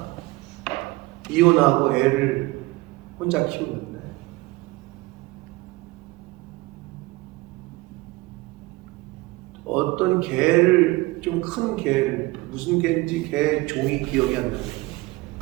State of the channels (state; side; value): quieter; left; 21.4 dB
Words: 이혼하고 애를 혼자 키우는데 어떤 개를, 좀 큰 개를, 무슨 개인지 개 종이 기억이 안 나요.